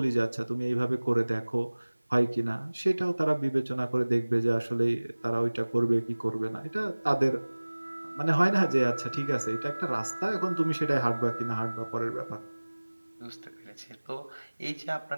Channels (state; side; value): inverted; both; correlation -1.00